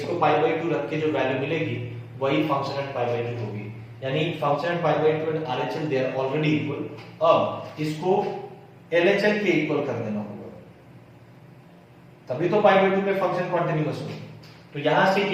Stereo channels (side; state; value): both; identical; correlation 1.00